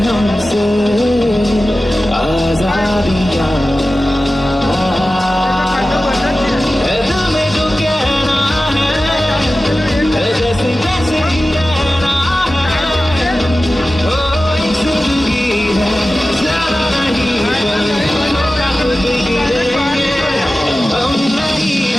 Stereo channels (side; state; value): both; normal; correlation 0.95